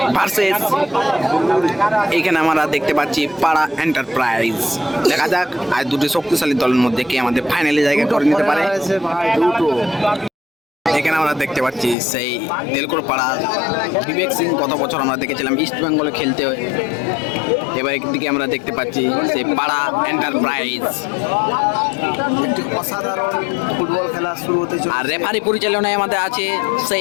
ভার্সেস এখানে আমরা দেখতে পাচ্ছি পাড়া এন্টারপ্রাইজ। দেখা যাক আর দুটি শক্তিশালী দলের মধ্যে কে আমাদের ফাইনালে জায়গা করে নিতে পারে। এখানে আমরা দেখতে পাচ্ছি সেই তেলকল পাড়া বিবেক সিং। গত বছর আমরা দেখেছিলাম ইস্ট বেঙ্গলে খেলতে। এবার একদিকে আমরা দেখতে পাচ্ছি সেই পাড়া এন্টারপ্রাইজ। একটি অসাধারণ ফুটবল খেলা শুরু হতে চলেছে। আর রেফারি পরিচালনায় আমাদের আছে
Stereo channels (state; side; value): drops out; right; at 12.0 s